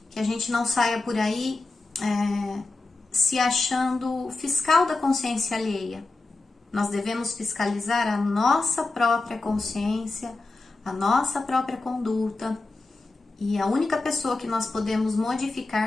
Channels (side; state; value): right; quieter; 3.3 dB